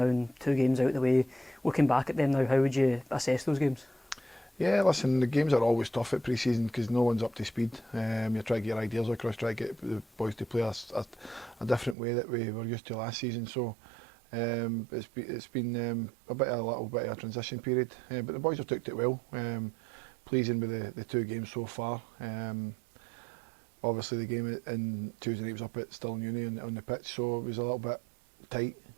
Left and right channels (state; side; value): drops out; left; at 12.0 s